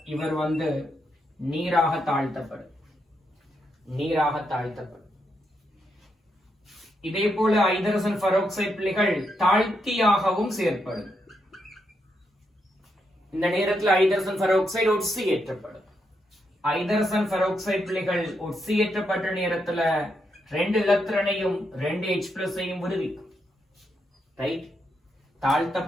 இவர் நீராக தாழ்த்தப்படும். நீராக தாழ்த்தப்படும். இதே போல ஐதரசன் பெராக்சைடு பிள்ளைகள் தாழ்த்தியாகவும் செயற்படும். இந்த நேரத்தில் ஐதரசன் பெராக்சைடு ஒட்சியேற்றப்படும். ஐதரசன் பெராக்சைடு பிள்ளைகள் ஒட்சியேற்றப்பட்ட நேரத்துல 2 இலத்திரனையும் 2 H+ விடுவிக்கும். ரைட்?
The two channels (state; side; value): normal; both; correlation 0.81